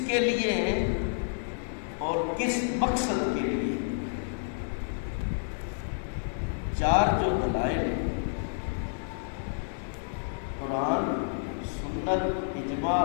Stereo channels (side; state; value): right; silent; digital silence